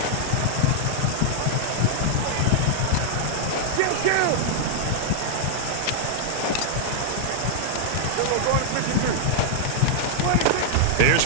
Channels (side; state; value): both; different; correlation -0.01